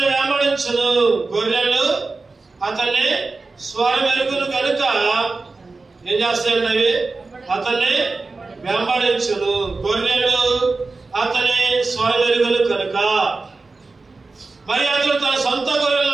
వెంబడించును. గొర్రెలు అతన్ని స్వరమెరుగును కనుక ఏం చేస్తాయండి? అవి అతన్ని వెంబడించును. గొర్రెలు అతని స్వరమెరుగును కనుక. మరి అతను తన సొంత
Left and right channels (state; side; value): quieter; left; 3.8 dB